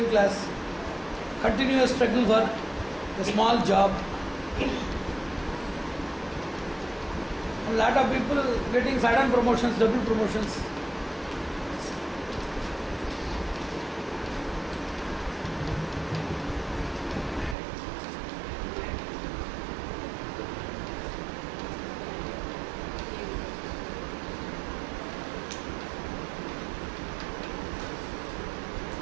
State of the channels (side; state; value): left; drops out; at 17.6 s